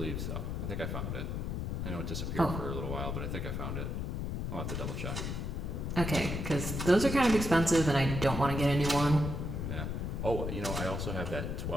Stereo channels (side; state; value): left; noise; rumble, 3 dB below the sound